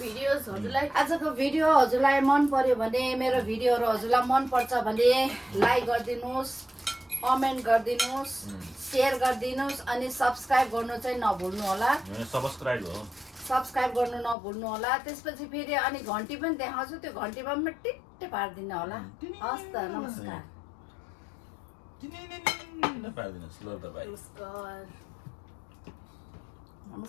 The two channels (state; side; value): drops out; right; at 14.4 s